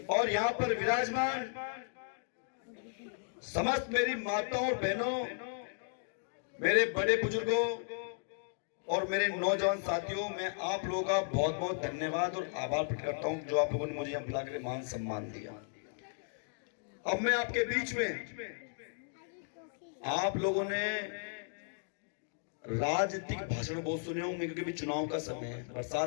और यहाँ पर विराजमान समस्त मेरी माताओं और बहनों, मेरे बड़े बुजुर्गों और मेरे नौजवान साथियों, मैं आप लोगों का बहुत बहुत धन्यवाद और आभार प्रकट करता हूं जो आप लोगों ने मुझे यहाँ बुलाकर मान सम्मान दिया। अब मैं आपके बीच में, आप लोगों ने राजनीतिक भाषण बहुत सुने होंगे क्योंकि भी चुनाव का समय है।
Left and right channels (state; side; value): silent; right; digital silence